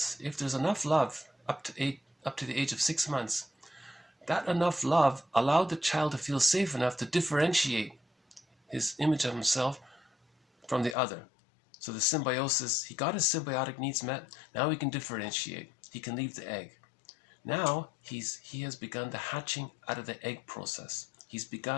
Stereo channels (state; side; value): drops out; right; at 11.0 s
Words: if there's enough love up to the age of 6 months, that enough love allowed the child to feel safe enough to differentiate his image of himself from the other. So the symbiosis, he got his symbiotic needs met. Now he can differentiate. He can leave the egg. Now he has begun the hatching out of the egg process. He's